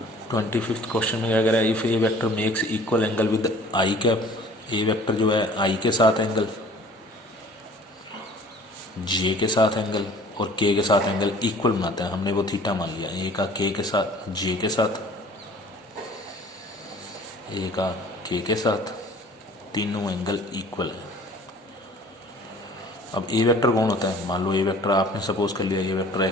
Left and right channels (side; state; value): both; normal; correlation 0.49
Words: 25th क्वेश्चन में क्या कह रहा है, if A vector makes equal angle with I cap, A vector जो है आई के साथ एंगल, जे के साथ एंगल और के के साथ एंगल इक्वल बनाता है, हमने वो थीटा मान लिया, ए का के के साथ, जे के साथ, ए का के के साथ, तीनों एंगल इक्वल है। अब ए वेक्टर कौन होता है, मान लो ए वेक्टर आपने सपोज कर लिया, ए वेक्टर